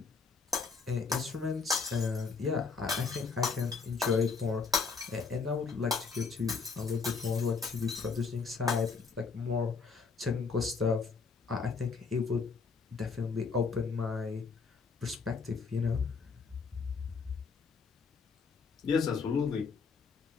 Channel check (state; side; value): quieter; right; 5.0 dB